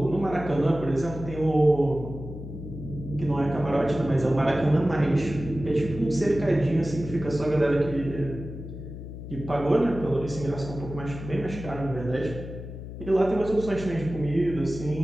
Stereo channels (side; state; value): left; noise; hum, 10 dB below the sound